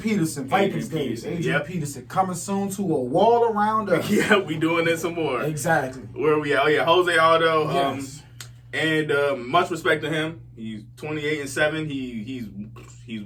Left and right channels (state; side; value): identical; both; correlation 1.00